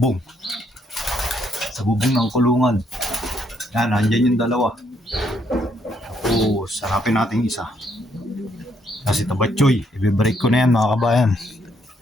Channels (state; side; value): normal; both; correlation 0.73